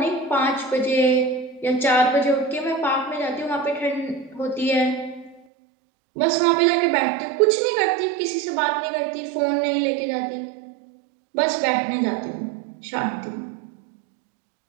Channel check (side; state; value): left; drops out; at 5.4 s